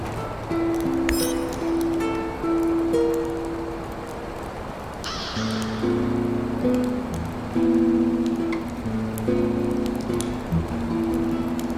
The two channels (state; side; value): identical; both; correlation 1.00